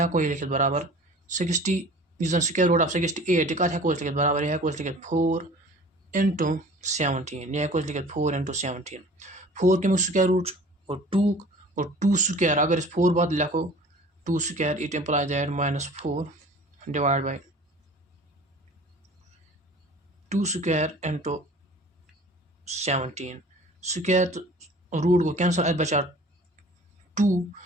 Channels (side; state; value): both; normal; correlation 0.45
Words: हेको लिखित बराबर 60 स्क्वायर रूट ऑफ 68 यह कत हेको लिखित बराबर यह हेको लिखित 4 into 17 यह हेको लिखित 4 into 17 4 कमिक स्क्वायर रूट और 2 स्क्वायर अगर 4 बाद लिखो 2 square it implies that -4 divide by 2 square into 17 square root गो कैंसल अत बचा 2